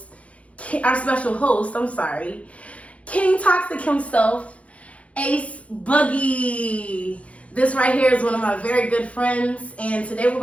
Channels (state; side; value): late; right; 0.064 ms